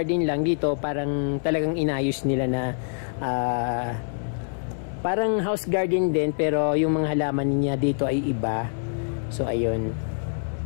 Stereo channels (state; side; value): silent; right; 61 dB below the other